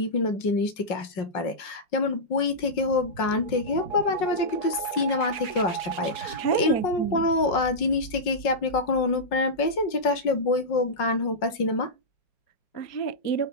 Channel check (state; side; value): late; right; 5.4 ms